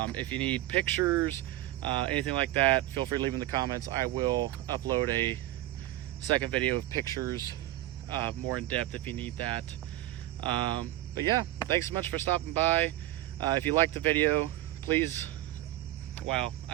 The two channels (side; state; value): left; quieter; 15.5 dB